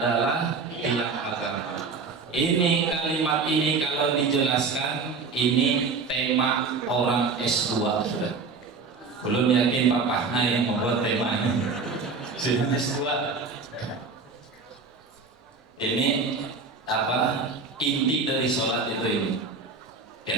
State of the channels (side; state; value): left; quieter; 4.6 dB